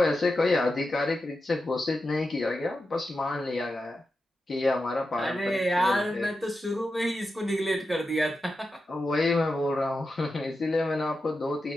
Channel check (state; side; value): normal; both; correlation 0.90